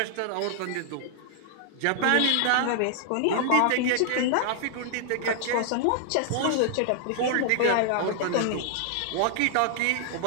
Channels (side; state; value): both; different; correlation 0.00